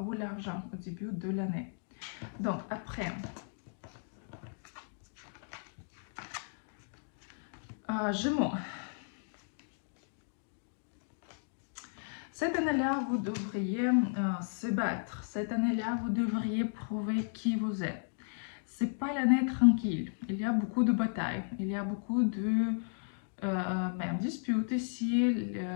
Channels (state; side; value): silent; right; digital silence